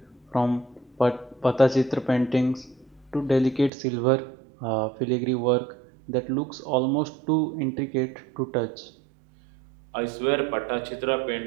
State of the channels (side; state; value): left; drops out; at 3.7 s